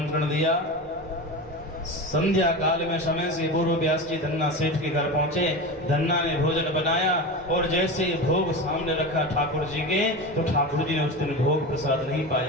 दिया। संध्या काल में समय से पूर्व व्यास जी धन्ना सेठ के घर पहुंचे। धन्ना ने भोजन बनाया, और जैसे भोग सामने रखा ठाकुर जी के, तो ठाकुर जी ने उस दिन भोग प्रसाद नहीं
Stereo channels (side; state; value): both; normal; correlation 0.25